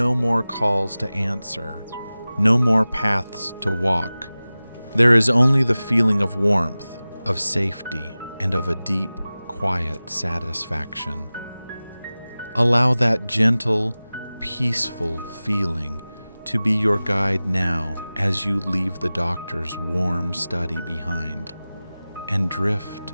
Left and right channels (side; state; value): both; inverted; correlation -0.97